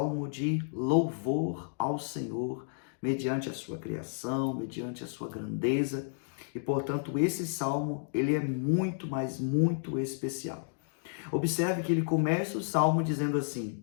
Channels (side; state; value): right; silent; digital silence